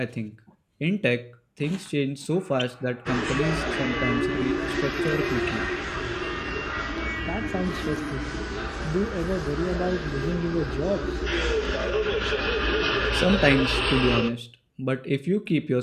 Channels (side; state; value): both; identical; correlation 1.00